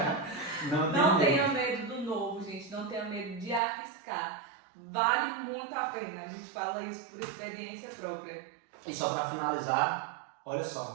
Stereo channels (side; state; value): left; drops out; at 3.6 s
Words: Não tenha medo do novo, gente. Não tenha medo de arriscar. Vale muito a pena. A gente fala isso por experiência própria. E só para finalizar, olha